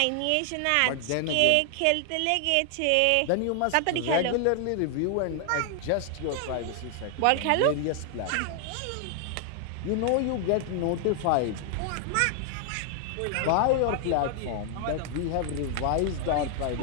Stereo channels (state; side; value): different; both; correlation 0.00